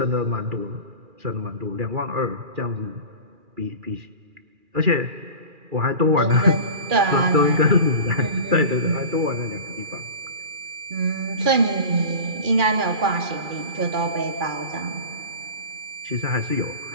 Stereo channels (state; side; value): late; left; 2.4 ms